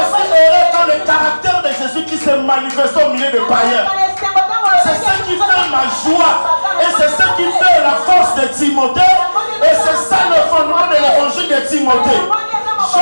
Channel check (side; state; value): both; inverted; correlation -1.00